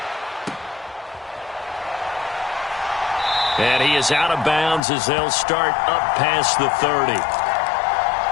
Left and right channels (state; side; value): drops out; right; at 4.8 s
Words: And he is out of bounds as they'll start up past the 30.